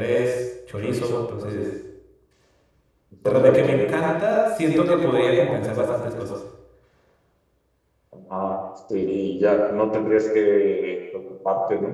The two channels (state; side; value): identical; both; correlation 1.00